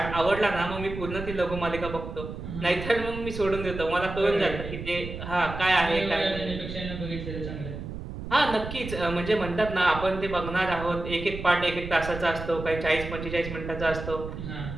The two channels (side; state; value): right; noise; rumble, 8 dB below the sound